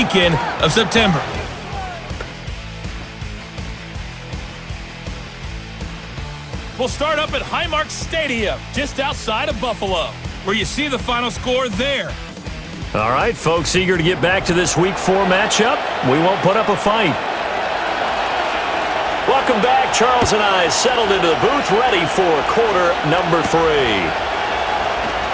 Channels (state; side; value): identical; both; correlation 1.00